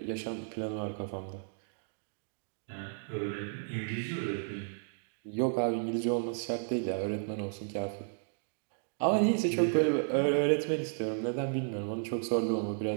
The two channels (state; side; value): silent; left; digital silence